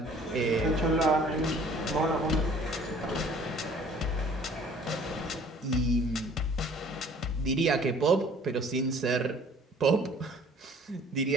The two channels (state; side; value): normal; both; correlation 0.53